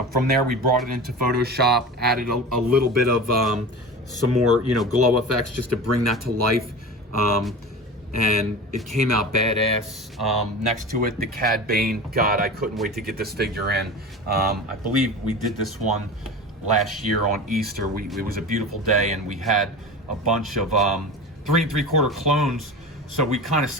From there, we brought it into Photoshop, added a little bit of some more, you know, glow effects just to bring that to life. And it came out badass. Next to it, the Cad Bane. God, I couldn't wait to get this figure in. I believe we did this one last year on Easter. It was a beautiful day, and we had a bunch of 3 3/4 clones. So we kind of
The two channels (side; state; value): both; normal; correlation 0.32